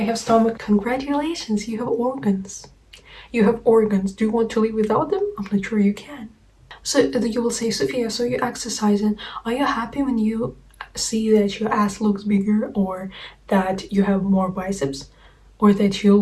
stomach, congratulations, you have organs. You have organs. Do you want to live without them? I'm not sure you can. So you will say, Sophia, so you're exercising. Are you happy when you see that your ass looks bigger, or that you have more biceps, or that you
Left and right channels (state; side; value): identical; both; correlation 1.00